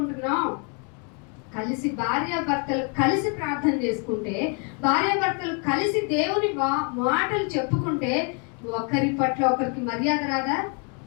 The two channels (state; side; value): quieter; right; 37.1 dB